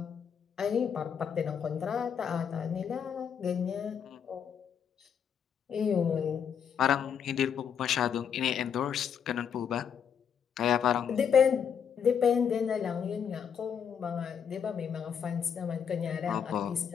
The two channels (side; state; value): right; quieter; 7.6 dB